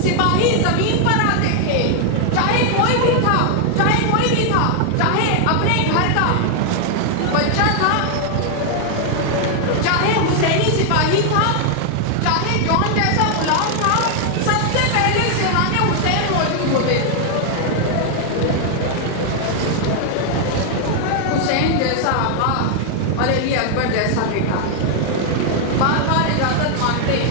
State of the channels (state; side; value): different; both; correlation 0.00